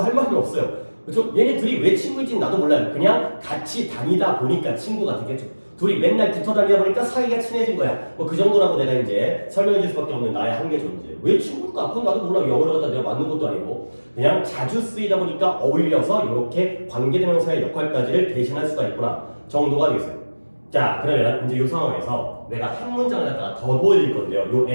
할 말은 없어요. 그렇죠? 얘네 둘이 왜 친구인지는 나도 몰라요. 그냥 같이 다니다 보니까 친구가 되겠죠. 둘이 맨날 붙어 다니다 보니까 사이가 친해진 거야. 뭐 그 정도라고 내가 이제 설명해 줄 수밖에 없는 나의 한계 존재. 왜 친구일까? 그건 나도 몰라. 영어를 갖다 내가 맞는 것도 아니고 그냥 자주 쓰이다 보니까 어울려서 이렇게 관계대명사의 역할까지를 대신할 수가 있구나 정도가 되겠어요. 자, 그러면 이제 이 상황에서 내가 한 문장을 갖다가 더 보여드릴 건데요. 요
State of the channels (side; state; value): both; inverted; correlation -1.00